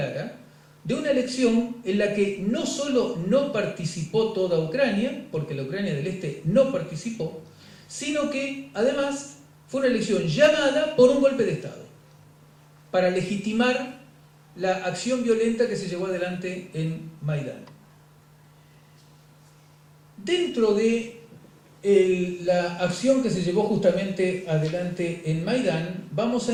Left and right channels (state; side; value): identical; both; correlation 1.00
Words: de una elección en la que no solo no participó toda Ucrania, porque la Ucrania del Este no participó, sino que además fue una elección llamada por un golpe de Estado, para legitimar la acción violenta que se llevó adelante en Maidán. dentro de la acción que se llevó justamente adelante en Maidán, vamos